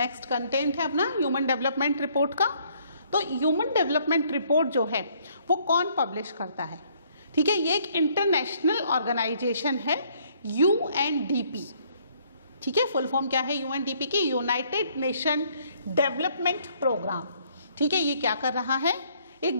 कंटेंट है अपना ह्यूमन डेवलपमेंट रिपोर्ट का। तो ह्यूमन डेवलपमेंट रिपोर्ट जो है वो कौन पब्लिश करता है? ठीक है, ये एक इंटरनेशनल ऑर्गेनाइजेशन है, UNDP। ठीक है, फुल फॉर्म क्या है UNDP की? United Nation Development Programme. ठीक है, ये क्या कर रहा है?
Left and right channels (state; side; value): inverted; both; correlation -0.65